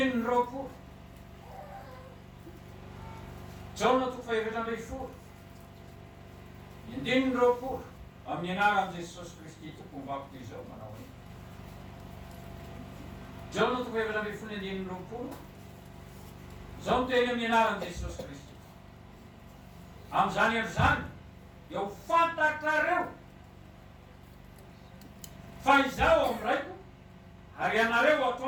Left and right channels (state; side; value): identical; both; correlation 1.00